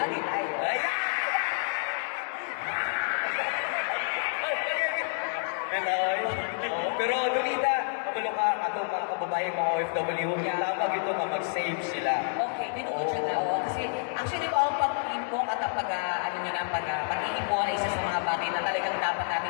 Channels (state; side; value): silent; right; digital silence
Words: tayo. Ayan! Pero Donita, kabalo ka ato mga kababayan mga OFW, tama ito nga mag-save sila. Okay, tinuod siya na. Oo. Kasi actually, ang pag-inbox at ang pag-iipon ay isa sa mga bagay na talagang dapat